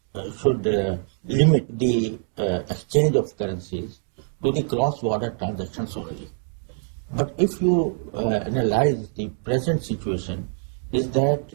limit the exchange of currencies to the cross-border transactions only. But if you analyze the present situation, is that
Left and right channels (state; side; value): silent; left; digital silence